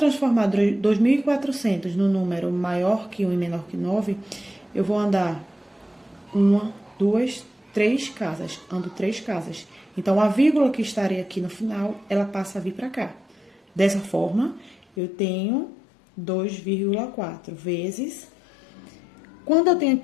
2.400 no número maior que 1 e menor que 9, eu vou andar 1, 2, 3 casas. Ando 3 casas. Então, a vírgula que estaria aqui no final, ela passa a vir para cá. Dessa forma, eu tenho 2,4 vezes... Quando eu tenho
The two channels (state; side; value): drops out; right; at 14.9 s